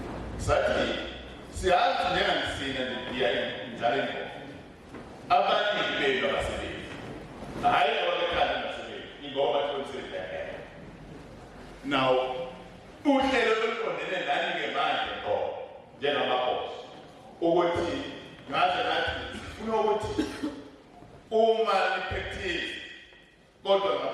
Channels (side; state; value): both; identical; correlation 1.00